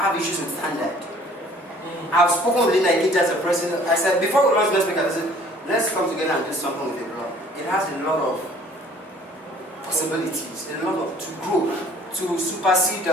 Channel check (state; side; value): normal; both; correlation 0.54